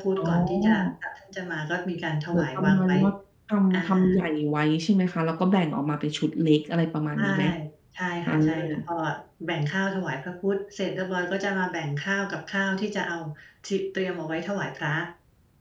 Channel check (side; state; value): both; identical; correlation 1.00